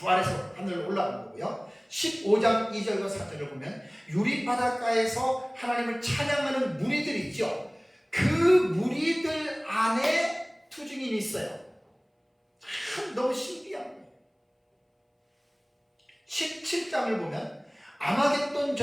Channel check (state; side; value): identical; both; correlation 1.00